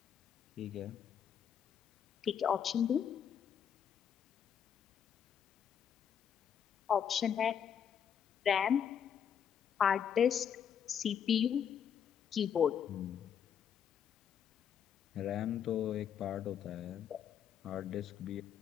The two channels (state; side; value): quieter; right; 8.4 dB